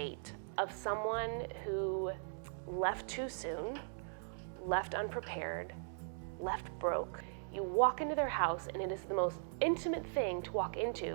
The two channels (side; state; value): left; silent; digital silence